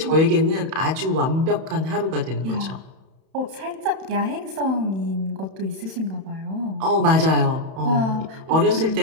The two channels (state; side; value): late; left; 31 ms